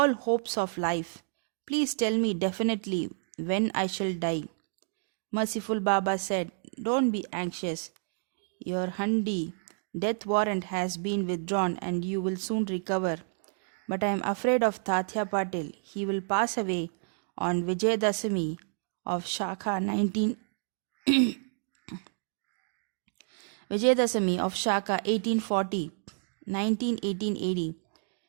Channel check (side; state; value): left; silent; digital silence